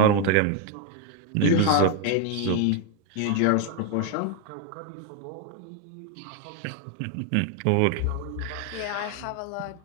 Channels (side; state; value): both; different; correlation 0.01